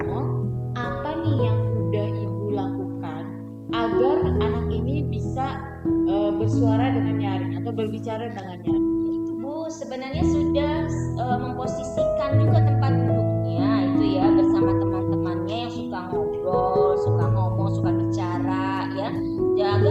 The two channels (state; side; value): identical; both; correlation 1.00